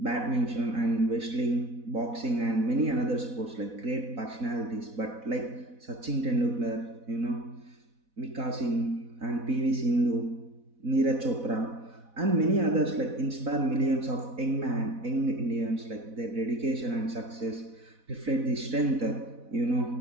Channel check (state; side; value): late; left; 4.1 ms